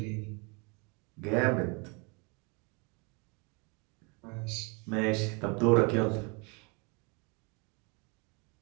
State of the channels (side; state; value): left; quieter; 31.6 dB